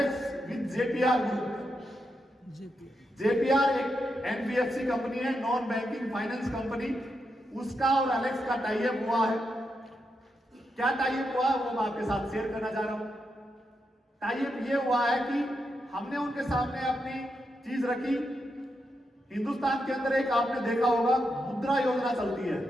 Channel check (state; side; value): normal; both; correlation 0.84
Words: with JPR group. JPR एक एनबीएफसी कंपनी है, नॉन बैंकिंग फाइनेंस कंपनी, उसका और अलेक्स का टाई अप हुआ है। क्या टाई अप हुआ वो मैं आपके साथ शेयर करना चाह रहा हूं। टाई अप ये हुआ है कि हमने उनके सामने अपनी चीज रखी। हिंदुस्तान के अंदर एक आपने देखा होगा मुद्रा योजना